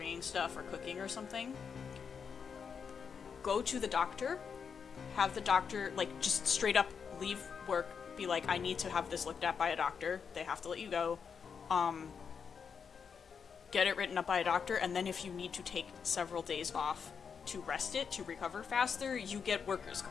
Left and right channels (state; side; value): quieter; right; 6.4 dB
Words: stuff or cooking or something, go to the doctor, have the doctor, like, just straight up leave work, be like, I need to have this looked at by a doctor, they have to let you go, get it written up by a doctor, and then if you need to take several days off to rest it, to recover faster, you get workers'